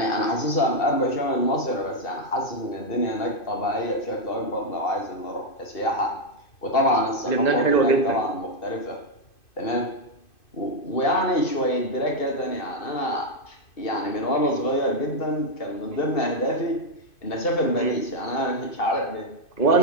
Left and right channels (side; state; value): right; late; 2.5 ms